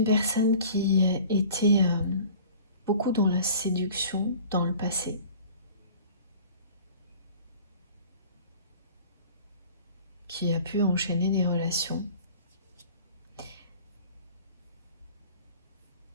personne qui était beaucoup dans la séduction dans le passé. Qui a pu enchaîner des relations.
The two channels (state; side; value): inverted; both; correlation -0.45